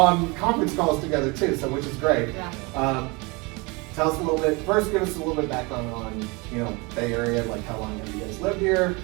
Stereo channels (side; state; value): left; quieter; 27.3 dB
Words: conference calls together too, so which is great. Yeah. Tell us a little bit, first give us a little bit background on, Bay Area, like how long have you guys lived here?